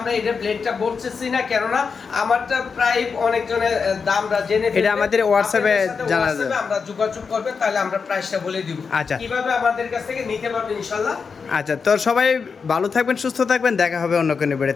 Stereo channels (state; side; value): quieter; right; 5.4 dB